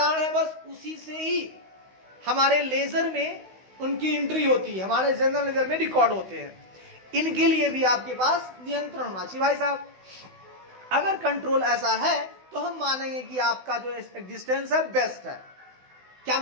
है बस उसी से ही हमारे लेजर में उनकी एंट्री होती है, हमारे जनरल लेजर में रिकॉर्ड होते हैं। इनके लिए भी आपके पास नियंत्रण होना चाहिए भाई साहब। अगर कंट्रोल ऐसा है तो हम मानेंगे कि आपका जो एग्जिस्टेंस है बेस्ट है। क्या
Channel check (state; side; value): late; left; 16 ms